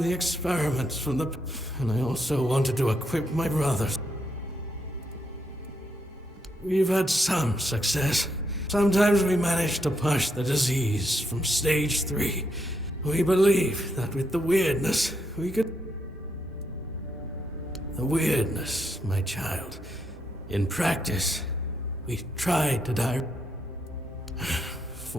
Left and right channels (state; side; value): normal; both; correlation 0.79